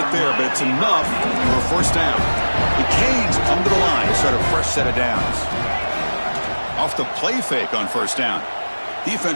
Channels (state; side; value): inverted; both; correlation -1.00